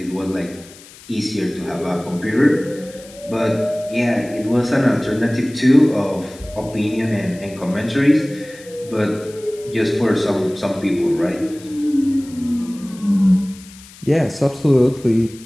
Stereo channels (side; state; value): left; noise; hiss, 21 dB below the sound